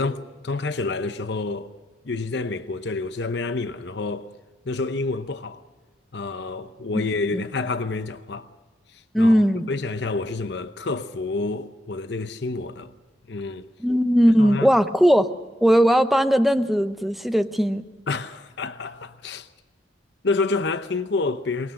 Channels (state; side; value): normal; both; correlation 0.79